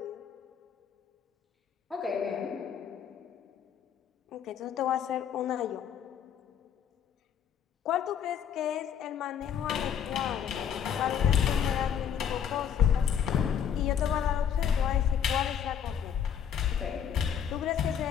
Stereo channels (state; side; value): quieter; right; 8.4 dB